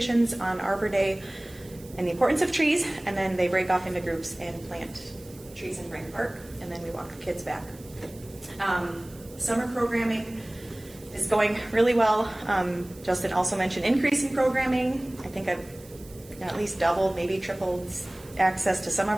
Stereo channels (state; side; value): noise; right; hiss, 22 dB below the sound